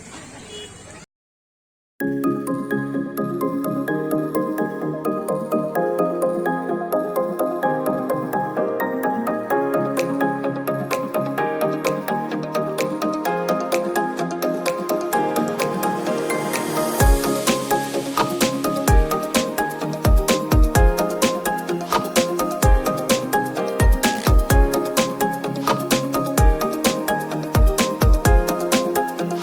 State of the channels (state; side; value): identical; both; correlation 1.00